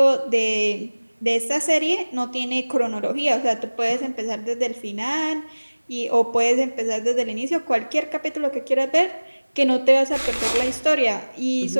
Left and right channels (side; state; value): both; inverted; correlation -1.00